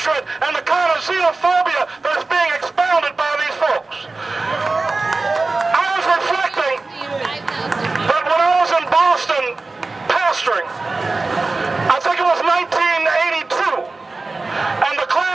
and the kind of xenophobia that is being expounded by these folks. I was reflecting that when I was in Boston pastoring, I think it was 1982, and the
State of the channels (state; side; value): quieter; left; 3.5 dB